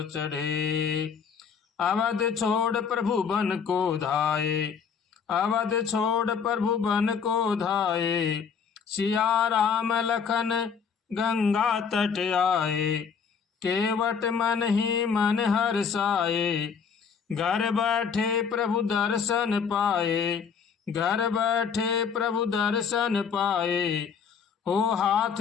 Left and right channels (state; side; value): quieter; right; 6.5 dB